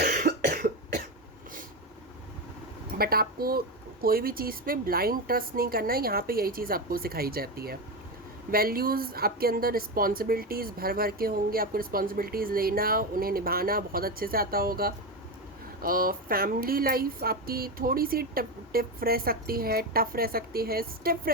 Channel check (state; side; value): normal; both; correlation 0.15